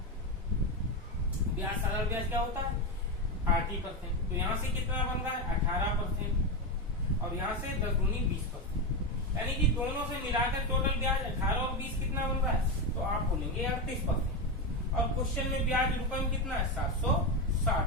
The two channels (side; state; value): both; normal; correlation 0.12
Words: ब्याज साधारण ब्याज क्या होता है? 80%। तो यहाँ से कितना बन रहा है? 18%, और यहाँ से 10 दूनी 20%, यानी कि दोनों से मिलाकर टोटल ब्याज 18 और 20 कितना बन रहा है? तो आप बोलेंगे 38%। और क्वेश्चन में ब्याज रुपए में कितना है? 760